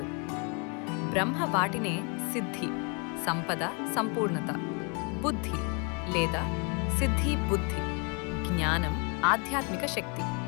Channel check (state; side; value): quieter; right; 35.3 dB